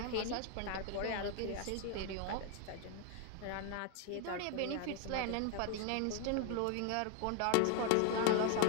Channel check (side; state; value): both; different; correlation 0.00